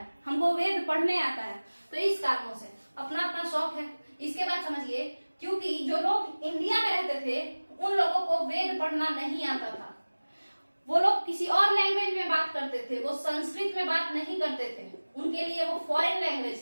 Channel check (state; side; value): inverted; both; correlation -1.00